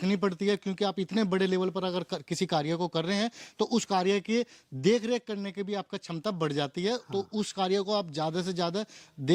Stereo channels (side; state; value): both; identical; correlation 1.00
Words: पड़ती है। क्योंकि आप इतने बड़े लेवल पर अगर किसी कार्य को कर रहे हैं तो उस कार्य की देख रेख करने की भी आपका क्षमता बढ़ जाती है। तो उस कार्य को आप ज़्यादा से ज़्यादा